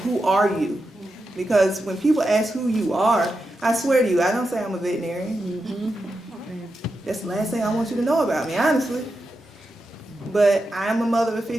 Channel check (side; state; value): both; normal; correlation 0.88